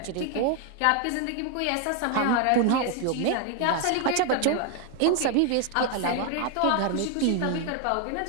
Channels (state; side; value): different; both; correlation 0.01